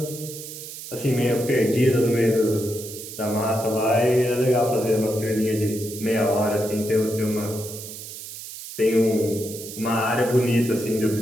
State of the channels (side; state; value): right; noise; hiss, 11 dB below the sound